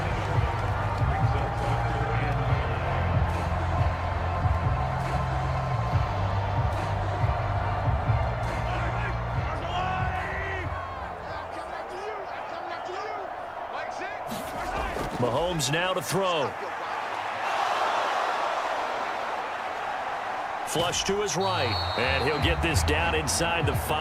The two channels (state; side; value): identical; both; correlation 1.00